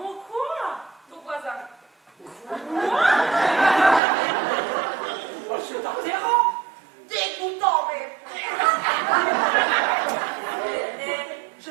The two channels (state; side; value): drops out; left; at 4.0 s